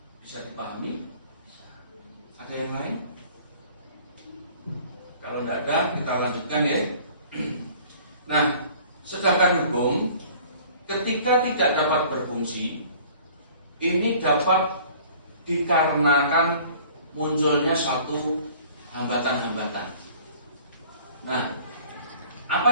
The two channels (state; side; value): inverted; both; correlation -0.51